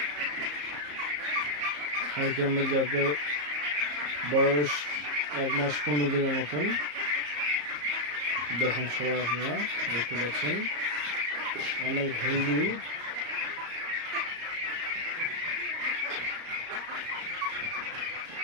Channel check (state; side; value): late; left; 34 ms